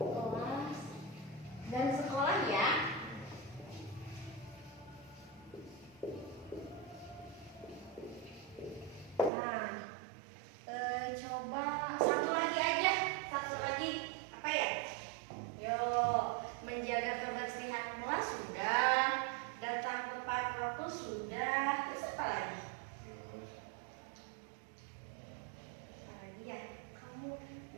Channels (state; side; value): drops out; left; at 9.3 s